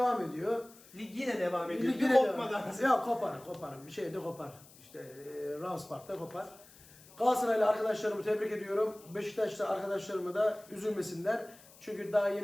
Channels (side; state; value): left; noise; hiss, 23 dB below the sound